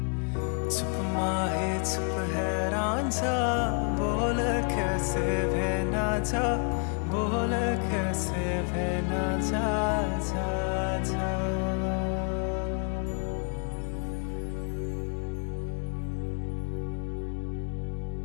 चुप माहे चुप है रांझा बोल कैसे वे ना जा बोल कैसे वे ना जा जा जा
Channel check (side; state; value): right; quieter; 40.0 dB